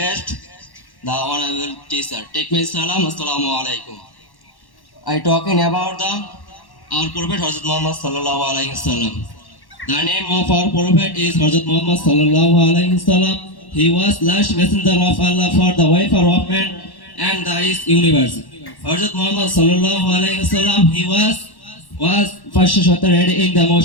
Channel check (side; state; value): right; late; 1.1 ms